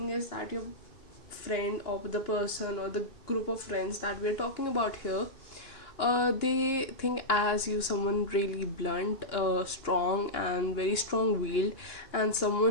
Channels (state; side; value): late; right; 2.9 ms